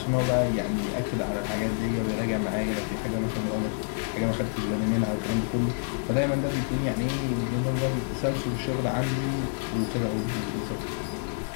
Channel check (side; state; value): right; silent; digital silence